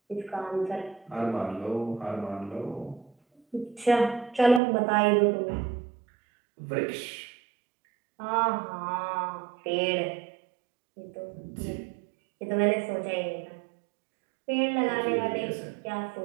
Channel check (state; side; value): drops out; left; at 4.6 s